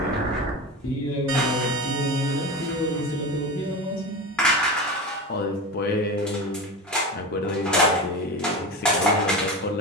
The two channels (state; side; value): normal; both; correlation 0.25